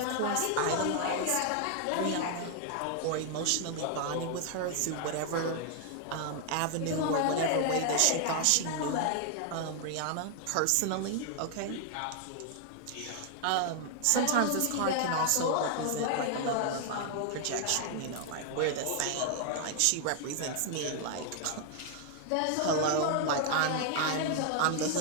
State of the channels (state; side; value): different; both; correlation 0.00